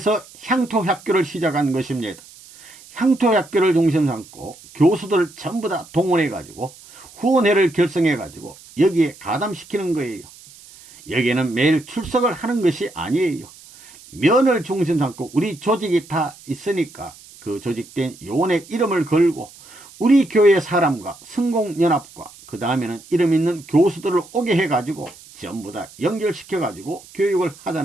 향토학교를 시작한 것입니다. 향토학교를 중심 삼고 교수들을 전부 다 동원해 가지고 후원회를 결성해 가지고 여기에 가담시키는 거예요. 여기에는 매일 출석을 하는 것이 아니에요. 면을 중심 삼고 우리 조직이 다 있으니까 그 조직된 요원의 이름을 걸고 우리 교회 사람과 성공연합과 그 다음에는 이름 있는 교수들을 오게 해가지고 전부 다 연결시켜가지고 교육을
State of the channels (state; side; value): noise; right; hiss, 22 dB below the sound